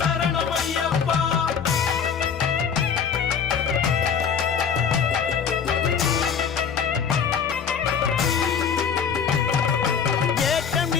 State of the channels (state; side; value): quieter; right; 6.9 dB